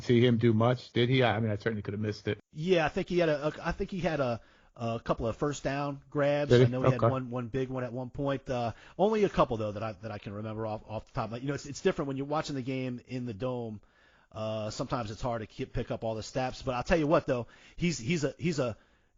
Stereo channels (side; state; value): both; identical; correlation 1.00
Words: see him do much. Did he? I mean, I certainly could have missed it. Yeah, I think he had a couple of first down grabs. Did he? I know he Okay. had one big one at one point. Only a couple though that I can remember off the top. But it's different when you're watching the game in the dome. Sometimes it's hard to pick up all the stats. But I'll tell you what though, he's a